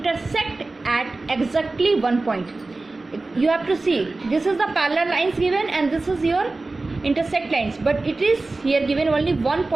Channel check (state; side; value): quieter; left; 3.3 dB